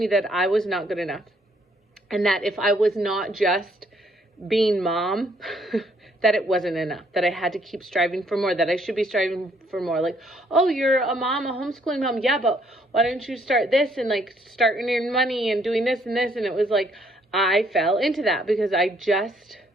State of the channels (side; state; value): both; normal; correlation 0.68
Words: that I was not good enough, and that if I was not just being mom, that it wasn't enough, that I had to keep striving for more, that I should be striving for more. Like, oh, you're a mom, a homeschooling mom. Yeah, but why don't you start this and like start earning money and doing this and this? And it was like, I fell into that because I just